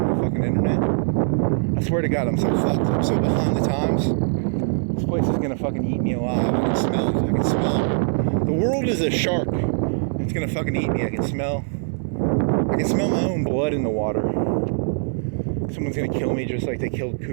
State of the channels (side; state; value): left; silent; 64 dB below the other